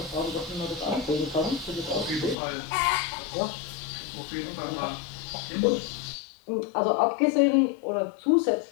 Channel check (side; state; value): right; drops out; at 2.4 s